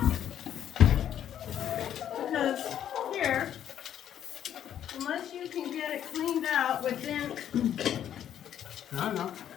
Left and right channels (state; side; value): quieter; right; 10.2 dB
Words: Because here, unless you can get it cleaned out within, I don't know,